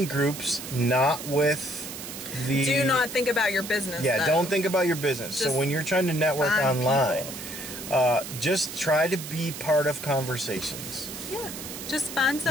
groups not with the... Do not think about your business. Yeah, though. Don't think about your business. Just so when you're trying to network online... people. Just try to be part of conversations. Yeah. Just find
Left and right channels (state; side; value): noise; right; hiss, 10 dB below the sound